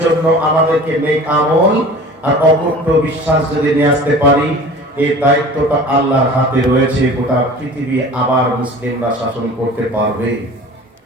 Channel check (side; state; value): both; normal; correlation 0.41